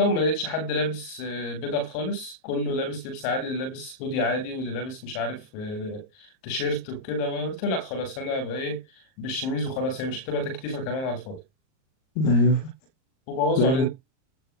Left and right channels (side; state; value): right; late; 38 ms